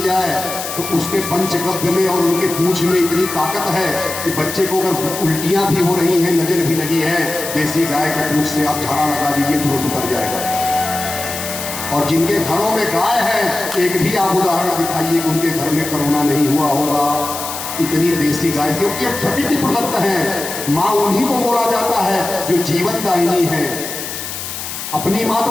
जाए तो उसके पंचगव्य में और उनके पूंछ में इतनी ताकत है कि बच्चे को अगर उल्टियां भी हो रही हैं, नजर भी लगी है, देसी गाय के पूंछ से आप झाड़ा लगा दीजिए तुरंत उतर जाएगा। और जिनके घरों में गाय है, एक भी आप उदाहरण दिखाइए कि उनके घर में कोरोना नहीं हुआ होगा। इतनी देसी गाय, क्योंकि ये प्रकृति प्रदत्त है। माँ उन्हीं को बोला जाता है जो जीवन दायिनी है। अपनी माँ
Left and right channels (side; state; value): left; noise; hiss, 7 dB below the sound